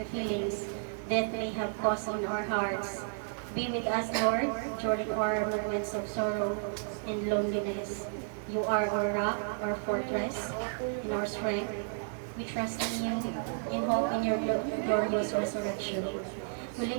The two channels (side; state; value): left; silent; digital silence